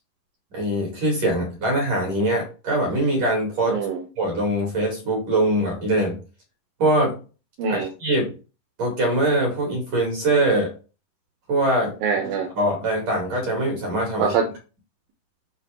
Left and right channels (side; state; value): left; late; 10 ms